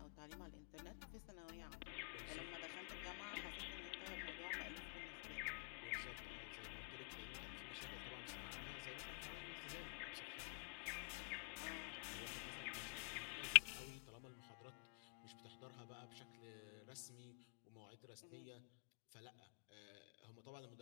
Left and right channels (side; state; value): right; quieter; 33.7 dB